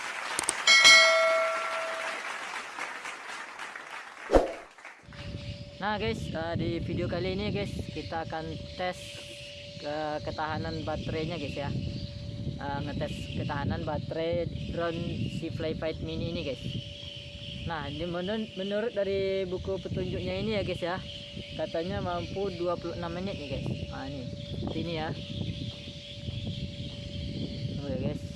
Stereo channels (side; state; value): both; identical; correlation 1.00